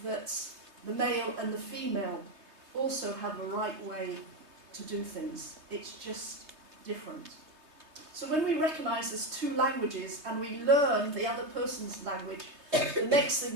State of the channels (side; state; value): left; late; 3.2 ms